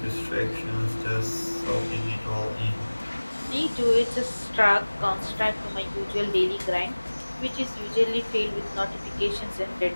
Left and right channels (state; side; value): inverted; both; correlation -1.00